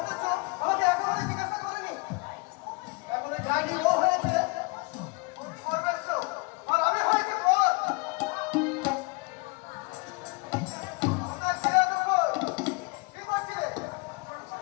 আমাকে একেবারে জিজ্ঞাসা করেনি। এখনো যায়নি, ও হয়েছে সর্বেশ্ব আর আমি হয়েছি পথ। আমার ছেলে দুপুর কি করছিলে?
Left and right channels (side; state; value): right; quieter; 28.1 dB